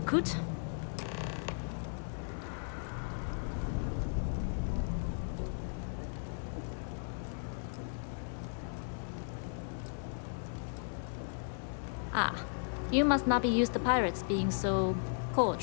Ah, you must not be used to pirates being so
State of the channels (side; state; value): right; silent; digital silence